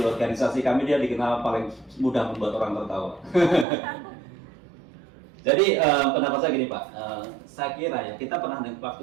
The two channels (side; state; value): left; drops out; at 3.7 s